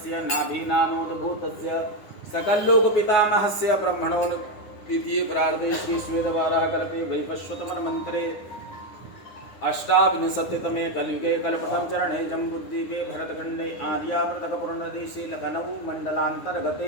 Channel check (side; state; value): right; late; 9.9 ms